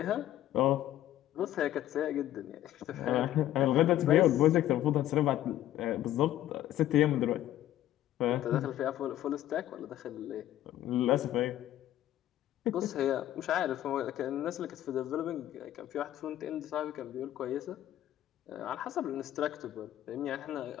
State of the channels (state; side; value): quieter; right; 13.1 dB